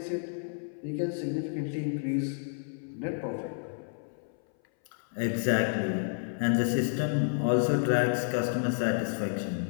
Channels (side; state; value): right; silent; 58 dB below the other